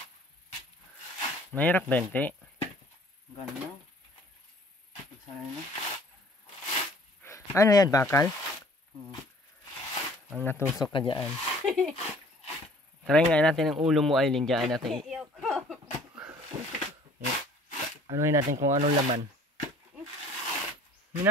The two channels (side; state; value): both; normal; correlation 0.53